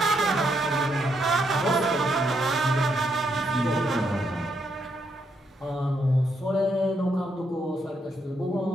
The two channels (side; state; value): both; normal; correlation 0.77